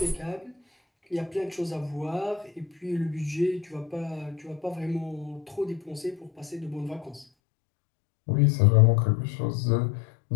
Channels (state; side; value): drops out; right; at 7.2 s